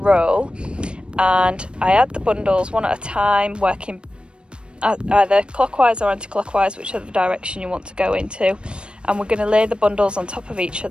and I add the bundles one at a time, working either clockwise or anti-clockwise, whichever direction you want to go into. And we're going to lay the bundles on top of each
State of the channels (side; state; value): left; late; 0.056 ms